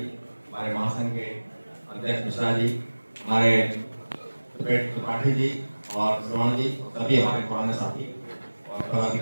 हमारे महासंघ के अध्यक्ष मिश्रा जी, हमारे त्रिपाठी जी और श्रवण जी, सभी हमारे पुराने साथी और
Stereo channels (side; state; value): both; inverted; correlation -1.00